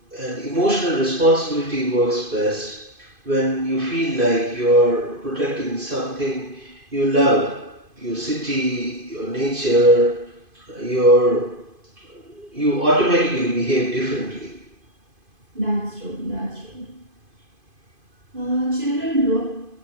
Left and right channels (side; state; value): left; late; 2.5 ms